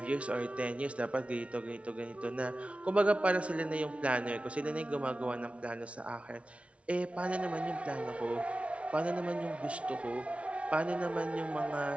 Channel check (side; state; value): left; late; 0.062 ms